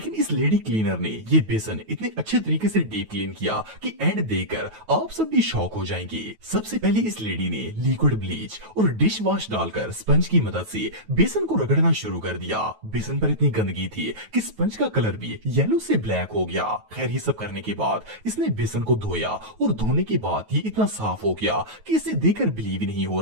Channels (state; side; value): late; left; 9.2 ms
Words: इस लेडी क्लीनर ने ये बेसन इतने अच्छे तरीके से डीप क्लीन किया कि एंड देखकर आप सब भी शॉक हो जाएंगे। सबसे पहले इस लेडी ने लिक्विड ब्लीच और डिश वॉश डालकर स्पंज की मदद से बेसन को रगड़ना शुरू कर दिया। बेसन पर इतनी गंदगी थी कि स्पंज का कलर भी येलो से ब्लैक हो गया। खैर ये सब करने के बाद इसने बेसन को धोया और धोने के बाद ये इतना साफ हो गया कि इसे देखकर बिलीव ही नहीं हो